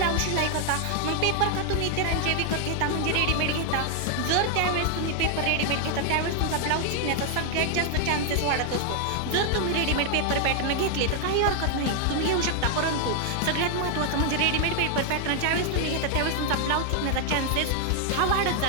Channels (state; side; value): different; both; correlation 0.00